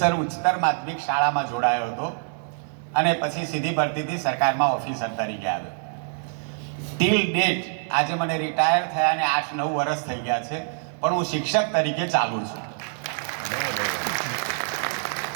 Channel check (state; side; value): silent; left; 62 dB below the other